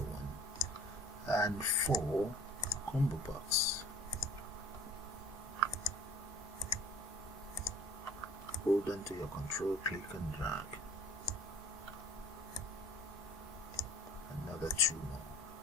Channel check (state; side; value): normal; both; correlation 0.49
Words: one, and 4 combo box. Hold on to your control, click and drag. Another 2 more.